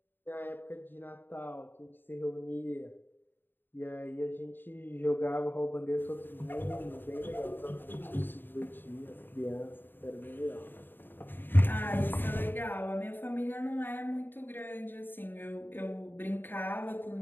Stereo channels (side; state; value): right; late; 0.095 ms